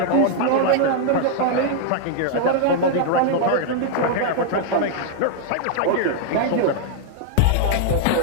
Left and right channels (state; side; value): different; both; correlation -0.01